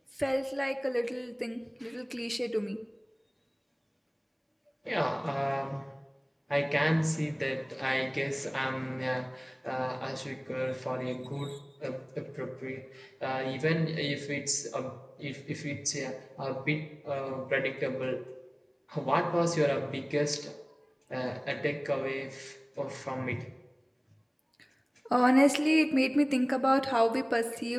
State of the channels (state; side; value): identical; both; correlation 1.00